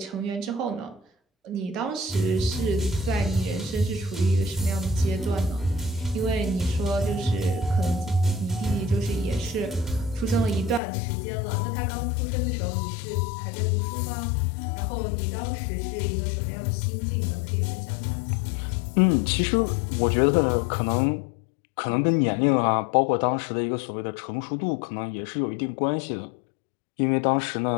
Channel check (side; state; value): right; drops out; at 10.8 s